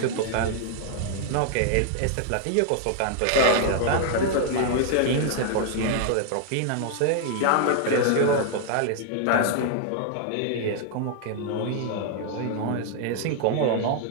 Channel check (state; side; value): different; both; correlation 0.00